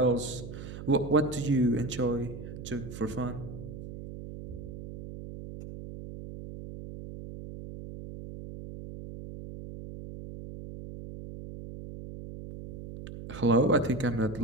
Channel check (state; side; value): noise; right; hum, 11 dB below the sound